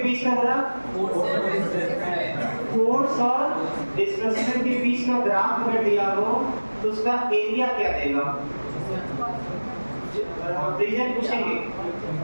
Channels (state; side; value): inverted; both; correlation -1.00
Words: का ग्राफ? फोर्स और डिस्प्लेसमेंट के बीच का ग्राफ अगर दिया हो तो उसका एरिया क्या देगा? रीजन पूछेंगे